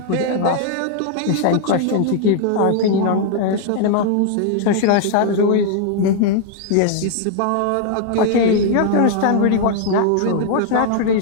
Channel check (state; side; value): different; both; correlation -0.01